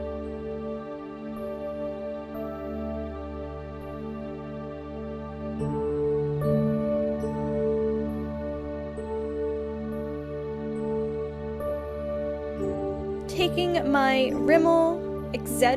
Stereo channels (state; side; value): identical; both; correlation 1.00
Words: Taking my Rimmel